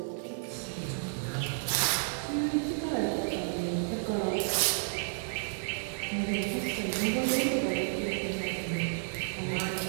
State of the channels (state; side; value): silent; left; digital silence